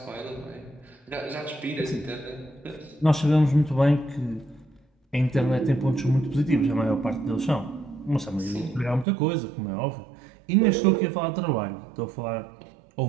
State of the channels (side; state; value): left; drops out; at 9.1 s